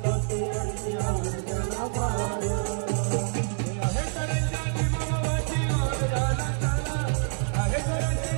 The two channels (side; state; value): left; silent; 60 dB below the other